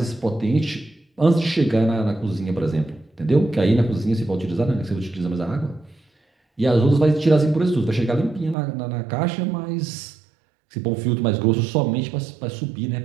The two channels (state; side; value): drops out; left; at 8.6 s